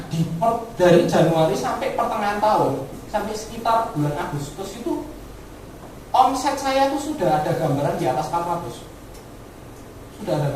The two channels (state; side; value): identical; both; correlation 1.00